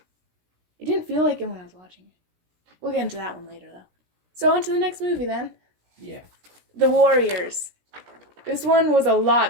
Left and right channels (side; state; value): left; late; 17 ms